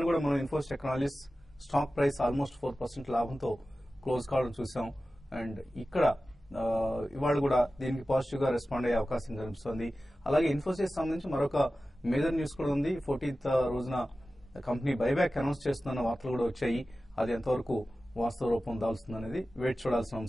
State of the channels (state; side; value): normal; both; correlation 0.95